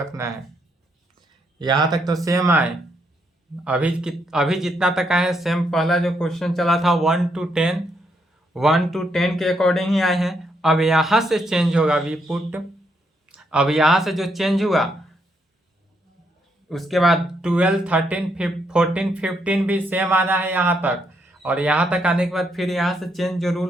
है। यहाँ तक तो सेम आए, अभी जितना तक आए सेम पहला जो क्वेश्चन चला था 1 to 10 के अकॉर्डिंग ही आए हैं। अब यहाँ से चेंज होगा वी पुट, अब यहाँ से जो चेंज हुआ उसके बाद 12 13 14 15 भी सेम आना है यहाँ तक, और यहाँ तक आने के बाद फिर यहाँ से चेंज जो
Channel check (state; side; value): normal; both; correlation 0.76